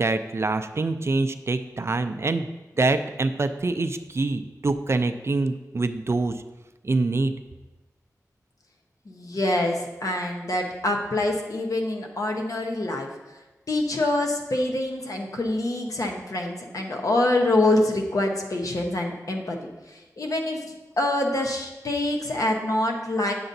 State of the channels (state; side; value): normal; both; correlation 0.77